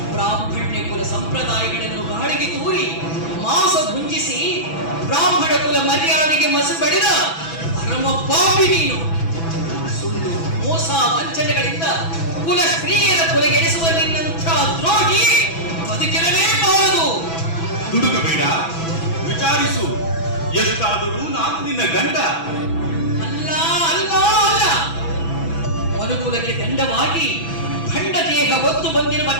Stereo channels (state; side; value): late; right; 6.1 ms